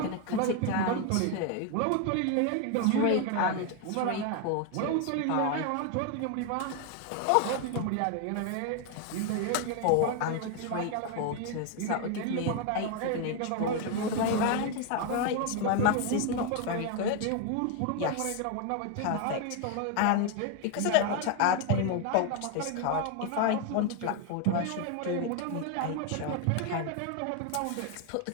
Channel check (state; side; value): different; both; correlation 0.01